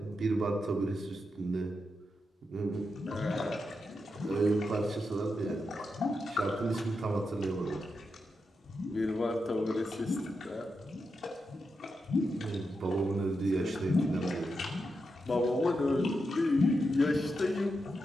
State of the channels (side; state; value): both; normal; correlation 0.86